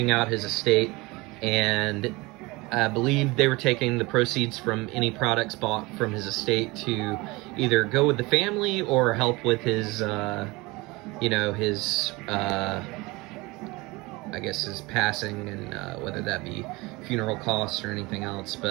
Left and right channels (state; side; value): quieter; left; 23.2 dB